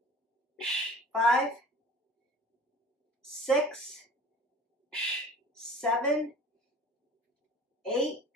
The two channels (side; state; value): both; normal; correlation 0.44